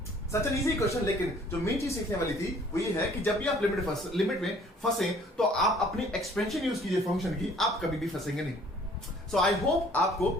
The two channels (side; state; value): both; normal; correlation 0.56